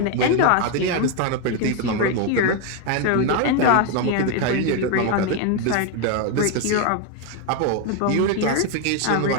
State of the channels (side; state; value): both; different; correlation 0.01